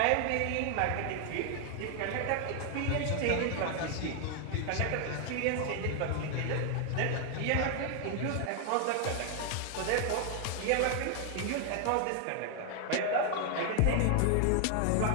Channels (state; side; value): different; both; correlation 0.00